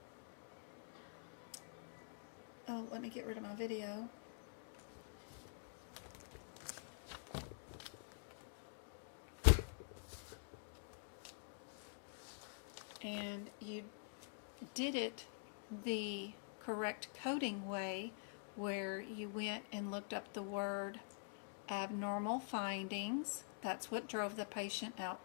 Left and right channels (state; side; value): silent; right; digital silence